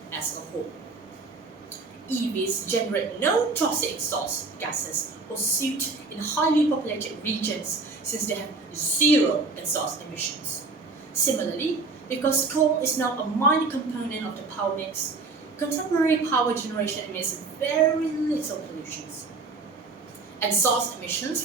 as a whole. EVs generate no toxic exhaust gases or soot in highly populated regions since they have zero exhaust emissions. Similarly, because coal is now a minor component of the power mix, contemporary power generation emits very little pollutions. Exhaust emissions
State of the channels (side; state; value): left; quieter; 3.9 dB